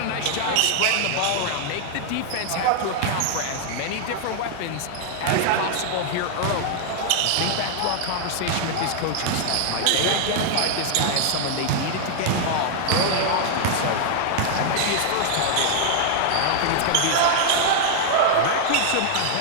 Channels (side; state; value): both; different; correlation 0.00